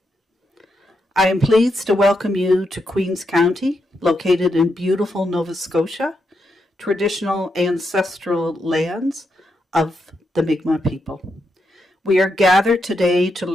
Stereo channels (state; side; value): normal; both; correlation 0.82